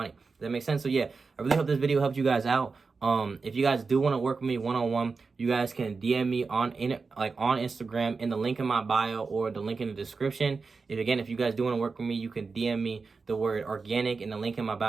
Does that make sense? So yeah, I really hope this video helped you guys out. If you guys do want to work with me one-on-one, you guys can DM me on Instagram in the link in my bio or the link in the description. If you guys do want to work with me, you can DM me the word organic in the link in my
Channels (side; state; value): left; quieter; 4.5 dB